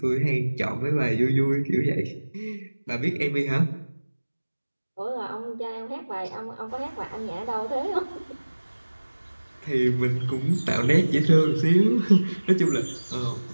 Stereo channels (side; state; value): both; inverted; correlation -1.00